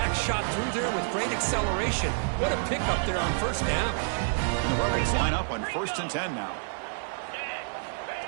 shot through there with great acceleration. What a pickup there on first down. And the Rebels line up on 1st and 10 now.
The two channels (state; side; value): silent; left; 59 dB below the other